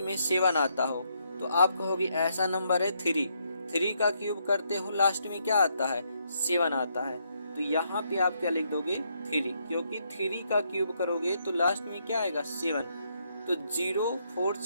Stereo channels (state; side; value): inverted; both; correlation -0.76